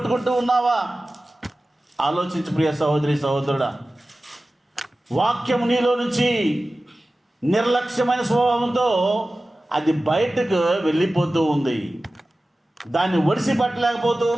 ఉన్నావా? ఆలోచించు ప్రియ సహోదరి, సహోదరుడా. వాక్యం నీలో నుంచి నిర్లక్ష్యమైన స్వభావంతో అది బయటకు వెళ్ళిపోతూ ఉంది. దాన్ని ఒడిసి పట్టలేకపోతూ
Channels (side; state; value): both; normal; correlation 0.96